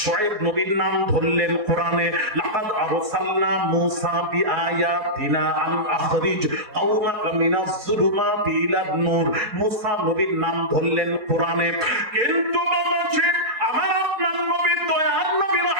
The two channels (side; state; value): left; late; 4.2 ms